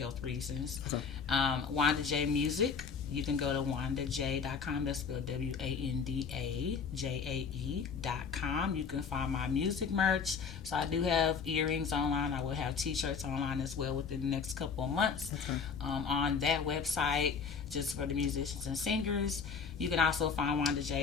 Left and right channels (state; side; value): quieter; right; 5.9 dB